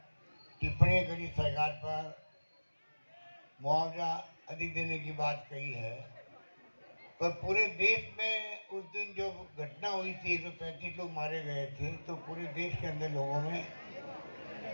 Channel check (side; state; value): both; inverted; correlation -1.00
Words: टिप्पणी करी सरकार पर, मुआवजा अधिक देने की बात कही है, पर पूरे देश में उस दिन जो घटना हुई थी, 135 लोग मारे गए थे, तो पूरे देश के अंदर लोगों में